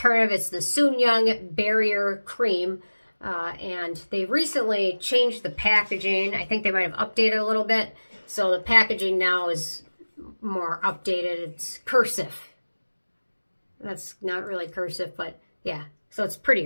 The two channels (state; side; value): inverted; both; correlation -1.00